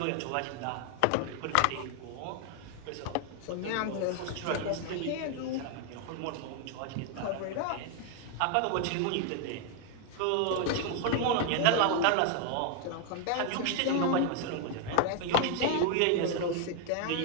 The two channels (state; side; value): different; both; correlation 0.00